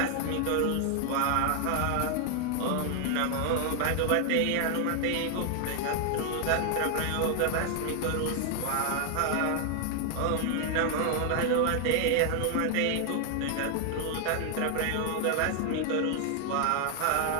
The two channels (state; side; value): different; both; correlation 0.00